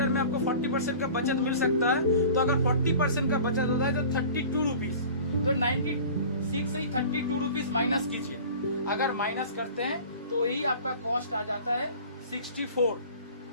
में आपको 40% का बचत मिल सकता है। तो अगर 40% का बचत होता है तो 32 रुपीज, तो 96 से ही 32 रुपीज माइनस कीजिए। अगर माइनस करते हैं तो यही आपका कॉस्ट आ जाता है 64।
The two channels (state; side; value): inverted; both; correlation -0.41